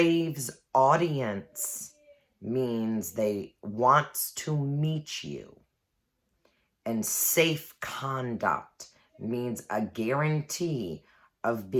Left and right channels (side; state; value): both; identical; correlation 1.00